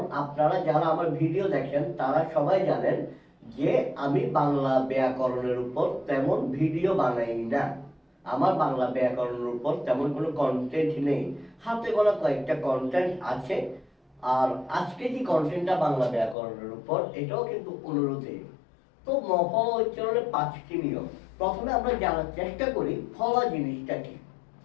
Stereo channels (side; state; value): right; drops out; at 16.4 s